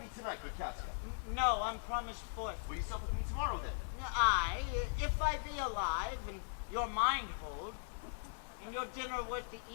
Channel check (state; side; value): silent; right; digital silence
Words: me tonight, good Casca? No, I'm promised forth. Will you sup with me tomorrow, then? Aye, if I be alive, and your mind hold, and your dinner worth the